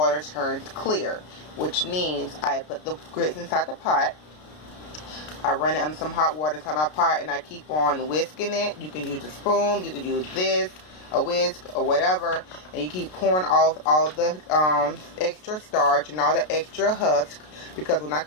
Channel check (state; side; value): late; right; 33 ms